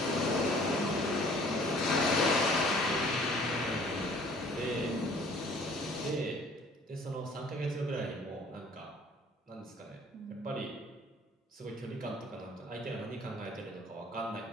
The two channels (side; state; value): both; normal; correlation 0.54